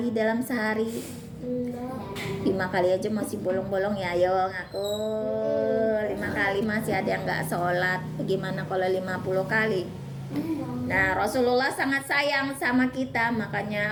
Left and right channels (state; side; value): identical; both; correlation 1.00